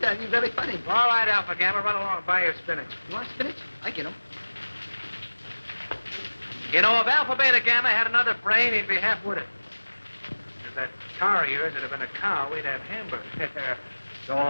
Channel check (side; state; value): both; inverted; correlation -1.00